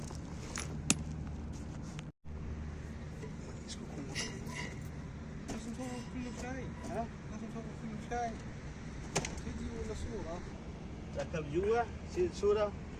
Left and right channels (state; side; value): identical; both; correlation 1.00